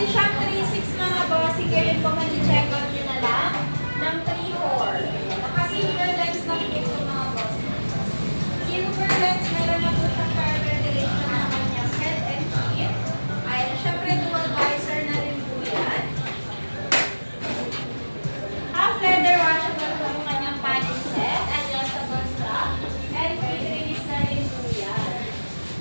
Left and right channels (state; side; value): inverted; both; correlation -1.00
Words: siyang 3.6 mga boss. Ngayon po mag-check out nyo na lang ng 3.4. Naka-silver lens lang ito mga boss. Silver lens, meron na po siyang power ventilation sa kanyang head and feet. Ayan. Siyempre, dual visor na rin po yan. Half leather washable po yung kanyang padding set. Adjustable strap. And quick release na rin po yan.